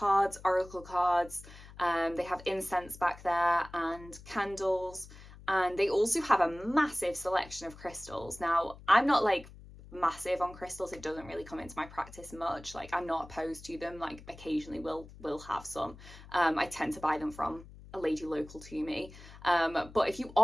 oracle cards. They have incense back there and candles. And they also have a massive selection of crystals. Now, I'm not like massive on crystals. It doesn't really come into my practice much. Like, I'm not opposed to them. Like, occasionally we'll have some. I tend to buy them from a lady local to me. But if you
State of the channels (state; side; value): noise; left; hum, 18 dB below the sound